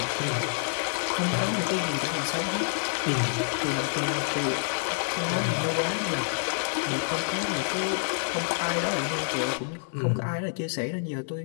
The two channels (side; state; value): right; silent; digital silence